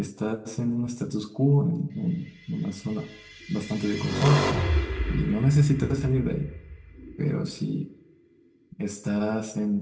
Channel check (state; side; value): identical; both; correlation 1.00